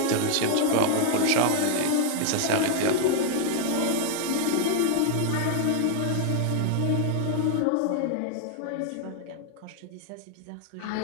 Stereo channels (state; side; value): different; both; correlation 0.00